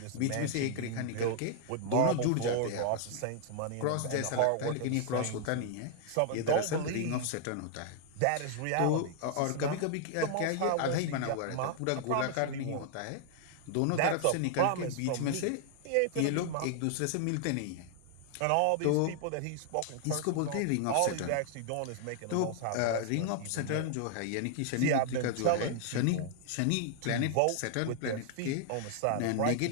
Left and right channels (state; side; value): different; both; correlation -0.01